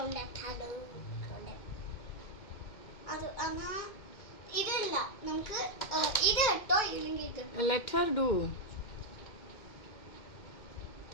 അത് എന്നാ ഇതില്ല, നമുക്ക് ഇത് ഇട്ടോ, ഇല്ലെങ്കിൽ ഇത്. Let Har do.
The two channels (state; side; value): late; right; 2.3 ms